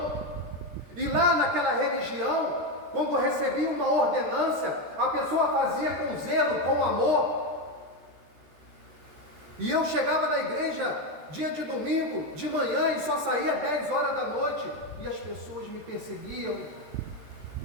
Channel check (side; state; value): left; late; 13 ms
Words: e lá naquela religião, quando eu recebia uma ordenância, a pessoa fazia com zelo, com amor. E eu chegava na igreja dia de domingo, de manhã, e só saía às 10 horas da noite, e as pessoas me perseguiam.